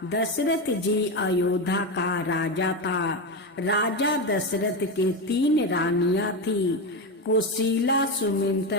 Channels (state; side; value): normal; both; correlation 0.15